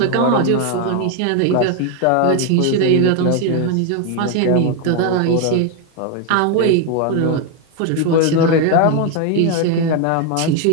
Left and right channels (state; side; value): different; both; correlation 0.01